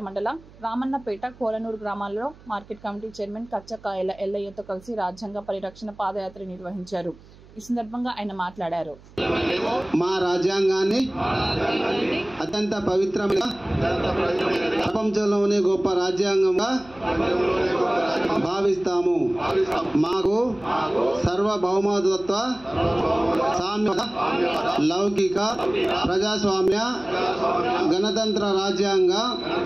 మండల రామన్నపేట కోలనూరు గ్రామాల్లో మార్కెట్ కమిటీ చైర్మన్ కచ్చకాయల ఎల్లయ్యతో కలిసి రాజ్యాంగ పరిరక్షణ పాదయాత్ర నిర్వహించారు. ఈ సందర్భంగా ఆయన మాట్లాడారు. మా రాజ్యాంగాన్ని అత్యంత పవిత్రమైన ప్రపంచంలోనే గొప్ప రాజ్యాంగంగా భావిస్తాము. మాకు సర్వభౌమత్వ, సామ్య, లౌకిక, ప్రజాస్వామ్య, గణతంత్ర రాజ్యాంగం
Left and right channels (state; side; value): noise; right; hum, 23 dB below the sound